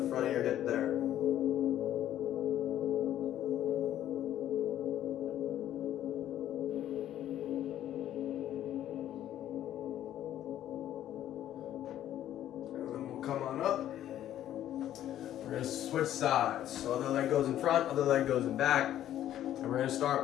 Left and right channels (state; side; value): quieter; right; 11.9 dB